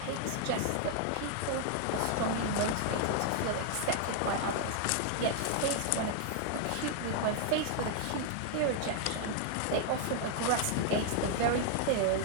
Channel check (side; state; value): both; different; correlation 0.00